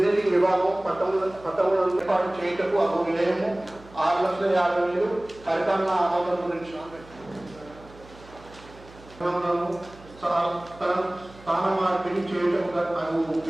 విభాగం పట్టణంలో ఏర్పాటు చేయటకు అగు వ్యయము 6,50,000 పరిపాలన ఆమోదం గురించి స్థాన మార్పిడి చేయటకు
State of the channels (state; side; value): noise; right; hum, 22 dB below the sound